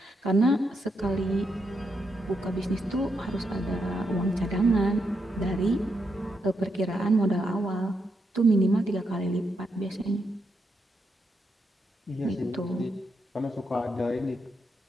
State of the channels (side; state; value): both; normal; correlation 0.81